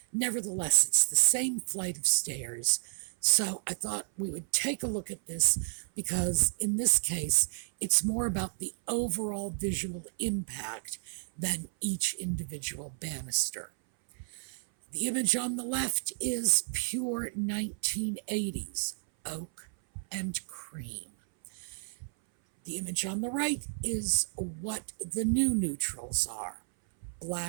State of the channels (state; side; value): silent; left; 57 dB below the other